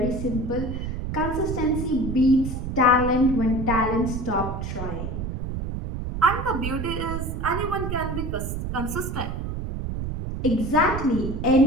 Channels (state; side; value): noise; right; rumble, 4 dB below the sound